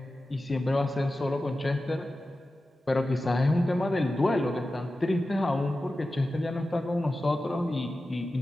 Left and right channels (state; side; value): normal; both; correlation 0.94